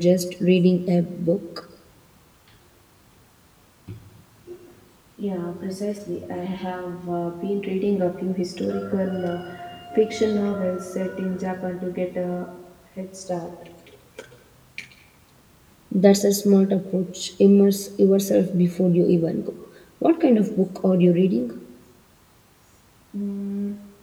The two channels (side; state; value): both; identical; correlation 1.00